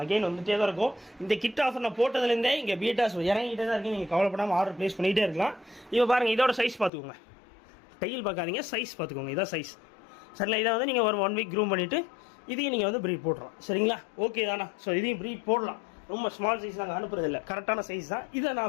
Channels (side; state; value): right; drops out; at 6.9 s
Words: வந்துகிட்டே தான் இருக்கும். இந்த கிட் ஆஃபர் நான் போட்டதுலேருந்தே இங்கே பீட்டாஸ் இறங்கிட்டே தான் இருக்குது. நீங்கள் கவலைப்படாமல் ஆர்டர் ப்ளேஸ் பண்ணிகிட்டே இருக்கலாம். இப்போ பாருங்கள், இதோட சைஸ் பார்த்துக்கோங்க, டைல் பார்க்காதீங்க, சைஸ் பார்த்துக்கோங்க. இதான் சைஸ். சரிங்களா, இதை வந்து நீங்கள் ஒரு 1 வீக் க்ரூம் பண்ணிவிட்டு இதையும் நீங்கள் வந்து ப்ரீட் போட்டுறோம். சரிங்களா, ஓகே தானா? ஸோ இதையும் ப்ரீட் போடலாம். ரொம்ப ஸ்மால் சைஸ் நாங்கள் அனுப்புறதில்லை, கரெக்டான சைஸ் தான். இதை